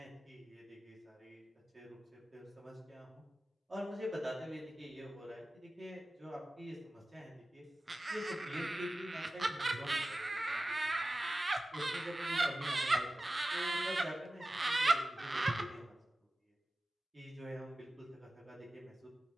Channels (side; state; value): both; normal; correlation 0.96